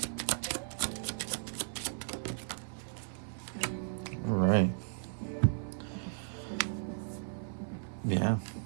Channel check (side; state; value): left; silent; digital silence